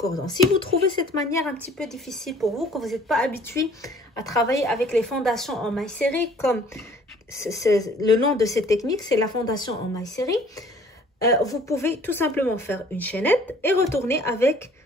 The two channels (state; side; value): normal; both; correlation 0.54